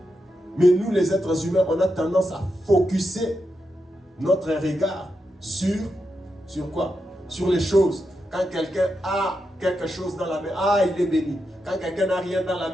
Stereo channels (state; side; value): normal; both; correlation 0.86